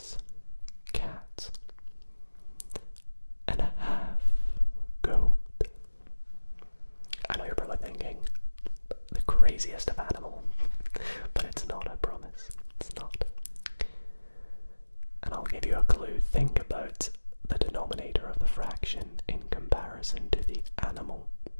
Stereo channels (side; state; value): both; inverted; correlation -1.00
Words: cat, and a half goat? I know you're probably thinking, the craziest of animal, but it's not, I promise. It's not. And I'll give you a clue. Think about the denominator of the fraction in comparison to the animal.